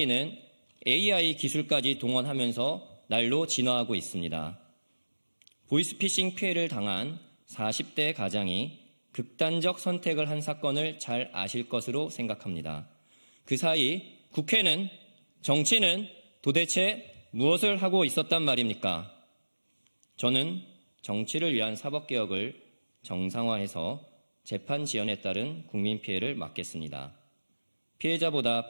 AI 기술까지 동원하면서 날로 진화하고 있습니다. 보이스피싱 피해를 당한 40대 가장이 극단적 선택을 한 사건을 잘 아실 것으로 생각합니다. 그 사이 국회는, 정치는 도대체 무엇을 하고 있었단 말입니까? 저는 정치를 위한 사법개혁을 정상화해서 재판 지연에 따른 국민 피해를 막겠습니다. 피해자보다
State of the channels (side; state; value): both; inverted; correlation -1.00